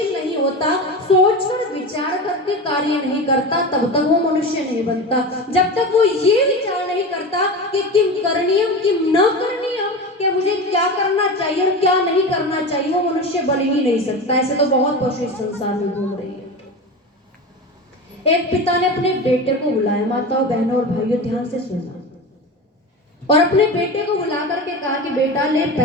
नहीं होता, सोचकर विचार करके कार्य नहीं करता, तब तक वो मनुष्य नहीं बनता। जब तक वो ये विचार नहीं करता कि किम करणीयम किम न करणीयम, कि मुझे क्या करना चाहिए और क्या नहीं करना चाहिए, वो मनुष्य बन ही नहीं सकता। ऐसे तो बहुत पशु इस संसार में घूम रही है। एक पिता ने अपने बेटे को बुलाया, माताओं, बहनों और भाइयों ध्यान से सुनना, और अपने बेटे को बुला करके कहा कि बेटा ले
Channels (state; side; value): normal; both; correlation 0.26